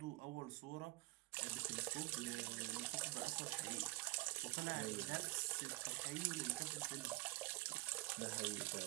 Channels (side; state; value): left; quieter; 20.9 dB